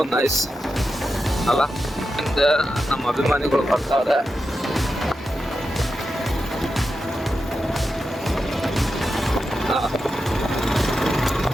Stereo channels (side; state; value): both; normal; correlation 0.89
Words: ನೈಸ್ ಅಲ್ಲ. ನಮ್ಮ ಅಭಿಮಾನಿಗಳು ಬರ್ತಾರೆ.